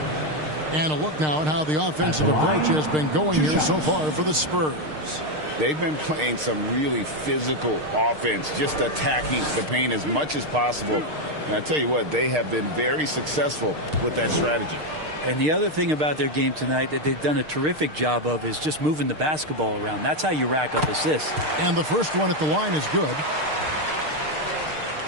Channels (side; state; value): left; late; 6.6 ms